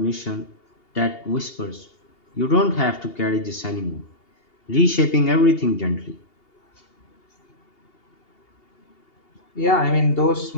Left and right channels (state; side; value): late; right; 2.8 ms